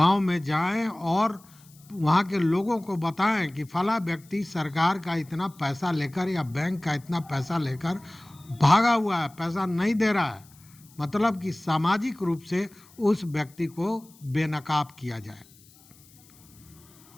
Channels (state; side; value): noise; left; hiss, 26 dB below the sound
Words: में जाएं और वहाँ के लोगों को बताएं कि फला व्यक्ति सरकार का इतना पैसा लेकर या बैंक का इतना पैसा लेकर भागा हुआ है, पैसा नहीं दे रहा है। मतलब कि सामाजिक रूप से उस व्यक्ति को बेनकाब किया जाए।